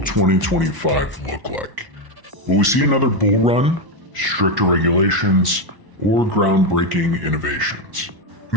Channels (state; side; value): late; left; 1.0 ms